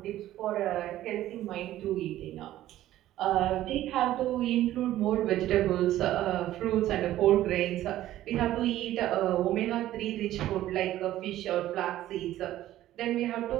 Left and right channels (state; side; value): quieter; left; 13.9 dB